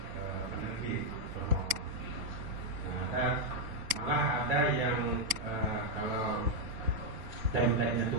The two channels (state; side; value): late; left; 4.2 ms